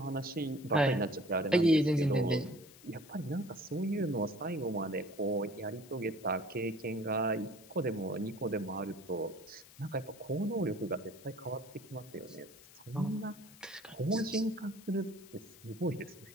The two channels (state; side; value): noise; left; hiss, 21 dB below the sound